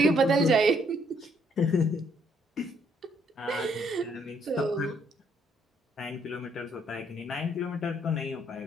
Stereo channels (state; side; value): normal; both; correlation 0.69